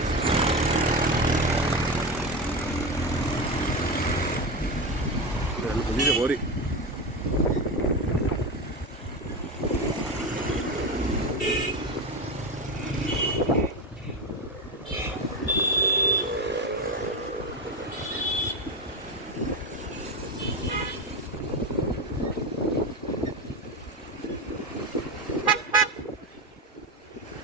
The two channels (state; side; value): normal; both; correlation 0.19